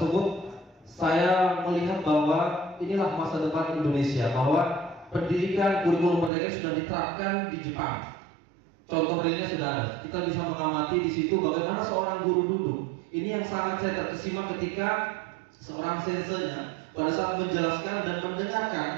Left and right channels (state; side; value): drops out; left; at 6.3 s